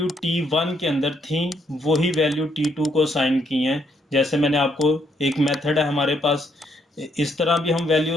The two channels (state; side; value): normal; both; correlation 0.73